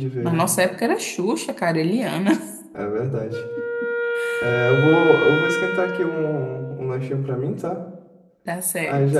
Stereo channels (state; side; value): identical; both; correlation 1.00